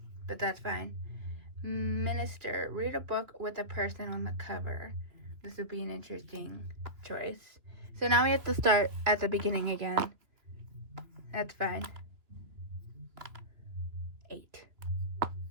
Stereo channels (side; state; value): left; late; 2.8 ms